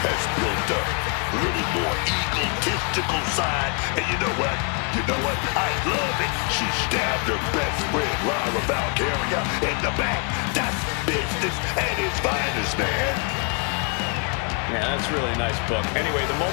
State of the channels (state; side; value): quieter; right; 37.0 dB